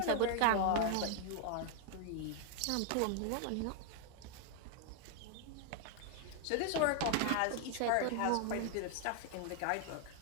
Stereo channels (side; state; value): both; different; correlation 0.00